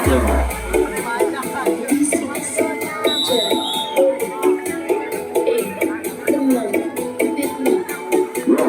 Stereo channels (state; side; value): identical; both; correlation 1.00